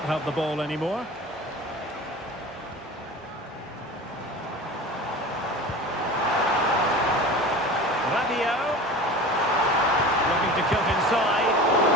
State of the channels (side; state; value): both; normal; correlation 0.35